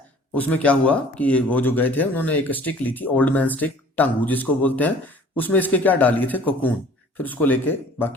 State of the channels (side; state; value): both; normal; correlation 0.50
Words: उसमें क्या हुआ कि वो जो गए थे उन्होंने एक स्टिक ली थी, ओल्ड मैन स्टिक, टंगू जिसको बोलते हैं, उसमें इसके क्या डालिए थे, कोकून, फिर उसको लेके